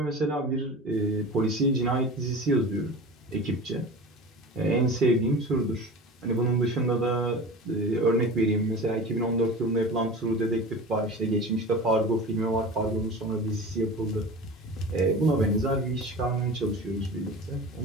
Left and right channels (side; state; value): both; normal; correlation 0.34